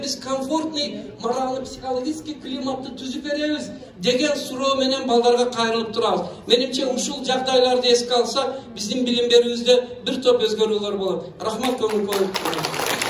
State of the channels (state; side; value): identical; both; correlation 1.00